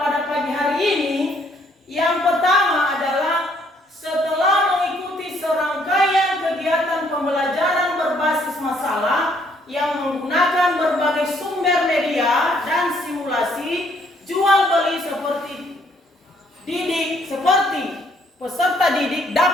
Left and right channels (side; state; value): both; normal; correlation 0.67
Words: pada pagi hari ini yang pertama adalah setelah mengikuti serangkaian kegiatan pembelajaran berbasis masalah yang menggunakan berbagai sumber media